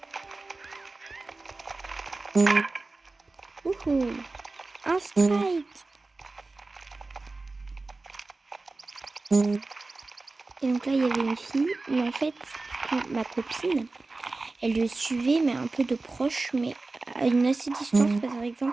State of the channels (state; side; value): quieter; left; 3.4 dB